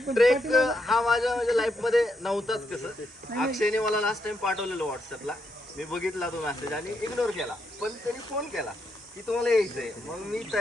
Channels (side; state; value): both; normal; correlation 0.80